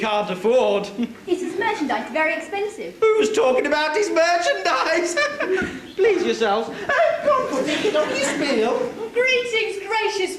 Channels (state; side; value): identical; both; correlation 1.00